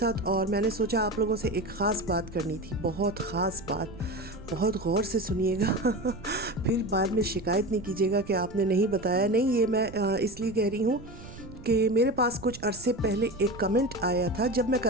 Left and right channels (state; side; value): noise; right; rumble, 16 dB below the sound